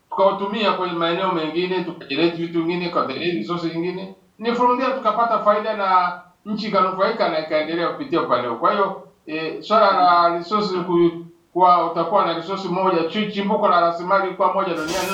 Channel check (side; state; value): both; identical; correlation 1.00